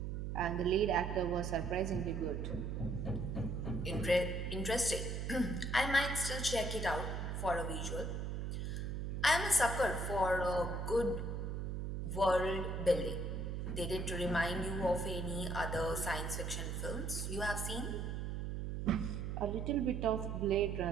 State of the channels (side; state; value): right; noise; hum, 3 dB below the sound